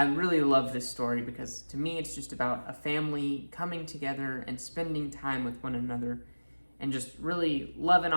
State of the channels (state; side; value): inverted; both; correlation -1.00